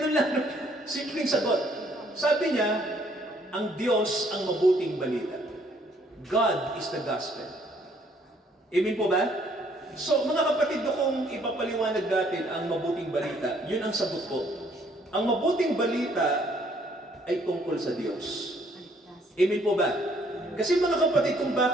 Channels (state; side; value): normal; both; correlation 0.65